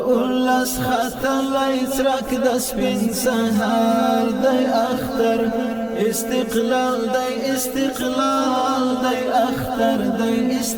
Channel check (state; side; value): noise; left; hum, 28 dB below the sound